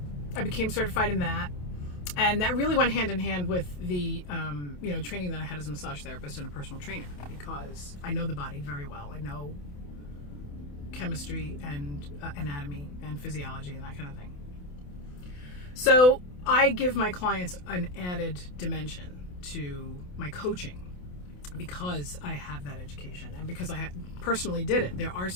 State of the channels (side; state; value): right; late; 28 ms